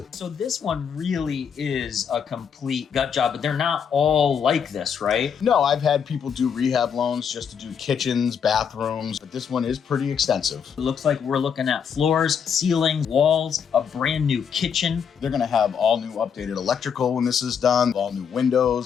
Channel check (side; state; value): right; quieter; 7.2 dB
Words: So this one really is a complete gut job, but they're not all like this, right? No, I've had people do rehab loans just to do kitchens, bathrooms, but this one is pretty extensive. It looks like we're looking at floors, ceilings, walls, a brand new kitchen. They're gonna have all new updated electrical when this is done, all new